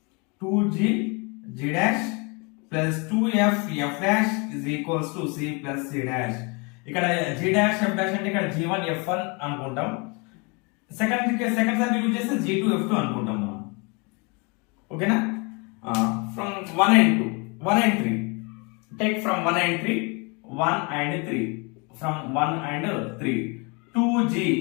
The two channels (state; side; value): quieter; right; 30.8 dB